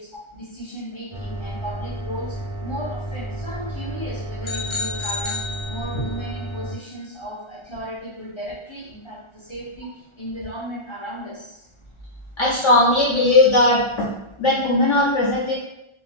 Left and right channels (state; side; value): late; right; 1.4 ms